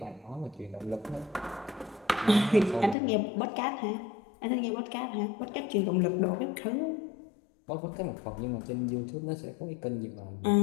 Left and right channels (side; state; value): right; drops out; at 3.0 s